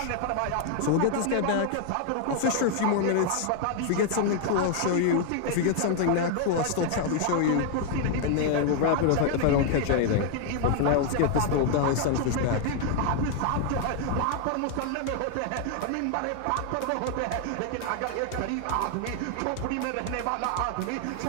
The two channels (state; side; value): different; both; correlation 0.00